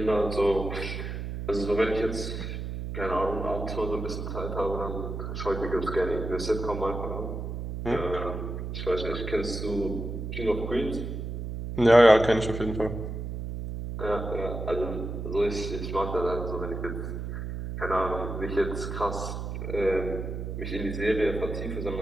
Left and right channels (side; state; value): right; noise; hum, 5 dB below the sound